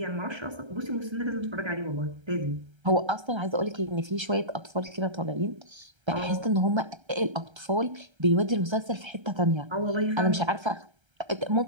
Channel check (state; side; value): late; left; 1.3 ms